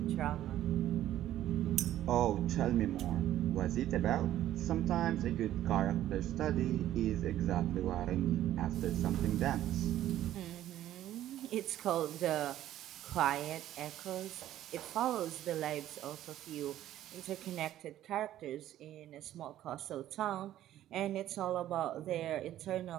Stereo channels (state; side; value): quieter; left; 12.8 dB